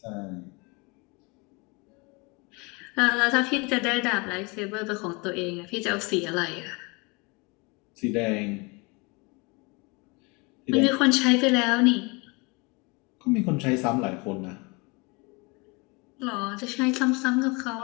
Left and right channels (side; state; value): right; quieter; 28.3 dB